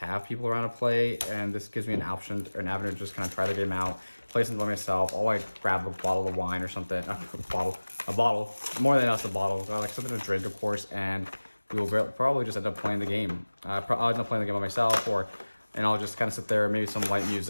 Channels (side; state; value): both; inverted; correlation -1.00